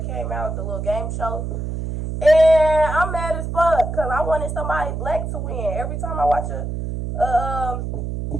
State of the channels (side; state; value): right; noise; hum, 4 dB below the sound